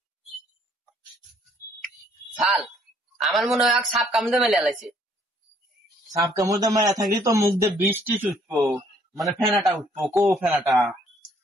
শাল, আমার মনে হয় সাপ কামড়ে মেলে আলাইছে। সাপ কামড়ে মায়া থাকলে তো মুখ দিয়ে বৃষ্টি উঠবো, মানে ফেনাটা উঠবো। কো ফেনাটা?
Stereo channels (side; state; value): both; normal; correlation 0.64